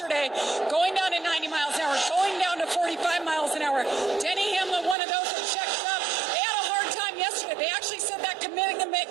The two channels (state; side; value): drops out; left; at 5.0 s